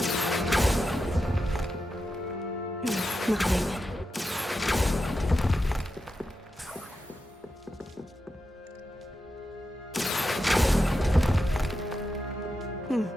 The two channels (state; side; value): normal; both; correlation 0.89